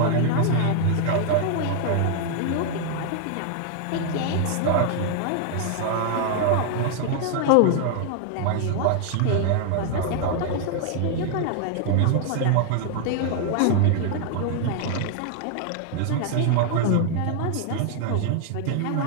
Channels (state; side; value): different; both; correlation 0.00